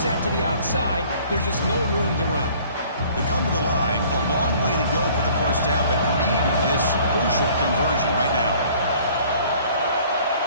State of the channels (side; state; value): both; inverted; correlation -0.54